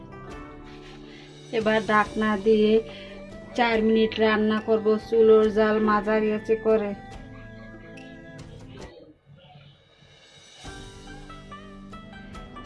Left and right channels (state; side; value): identical; both; correlation 1.00